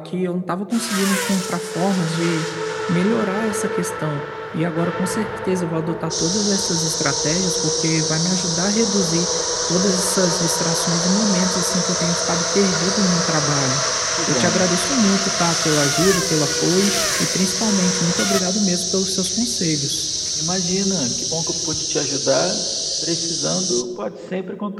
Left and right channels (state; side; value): identical; both; correlation 1.00